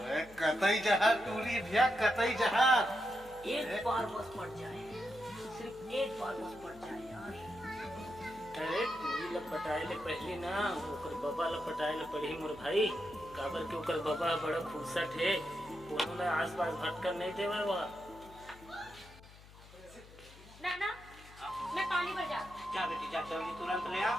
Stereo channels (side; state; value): left; noise; hum, 20 dB below the sound